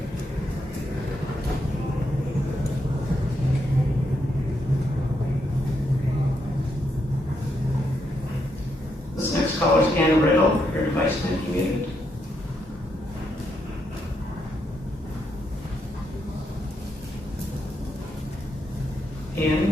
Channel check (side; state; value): both; normal; correlation 0.79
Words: This next caller is Anna Riddle. Your device may be muted.